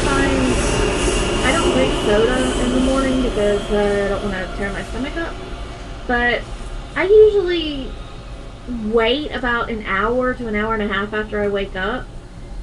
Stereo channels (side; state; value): both; identical; correlation 1.00